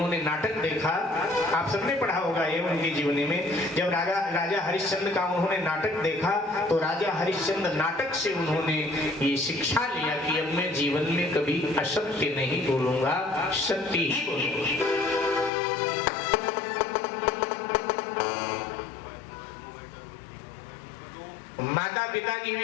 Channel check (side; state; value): right; drops out; at 15.5 s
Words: नाटक देखा, आप सबने पढ़ा होगा ये उनके जीवनी में, जब राजा हरिश्चंद्र का उन्होंने नाटक देखा तो राजा हरिश्चंद्र नाटक से उन्होंने ये शिक्षा लिया कि अब मैं जीवन में कभी असत्य नहीं बोलूंगा, सत्य ही बोलूंगा। माता पिता की